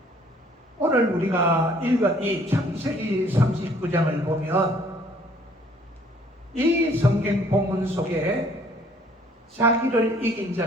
오늘 우리가 읽은 이 창세기 39장을 보면 이 성경 본문 속에 자기를 이긴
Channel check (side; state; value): both; normal; correlation 0.59